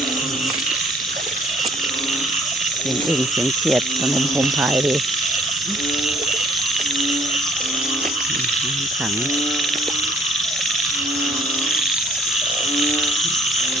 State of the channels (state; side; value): normal; both; correlation 0.60